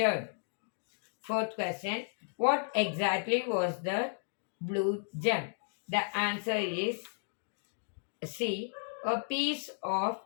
Fourth question: what exactly was the blue gem? The answer is C, a piece of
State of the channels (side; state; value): right; silent; digital silence